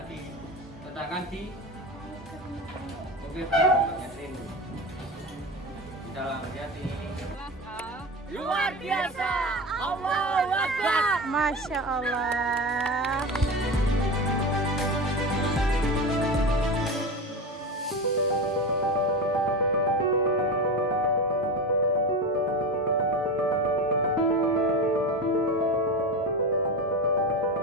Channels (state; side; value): normal; both; correlation 0.24